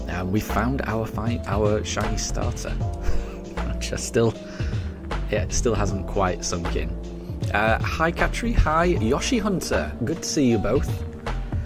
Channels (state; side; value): identical; both; correlation 1.00